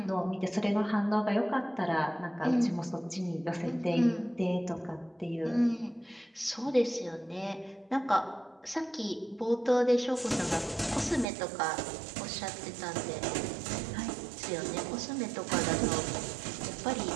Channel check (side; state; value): left; drops out; at 11.2 s